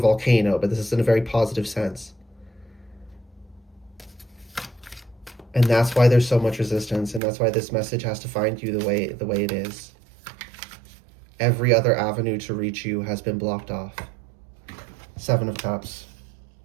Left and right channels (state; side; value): drops out; left; at 7.2 s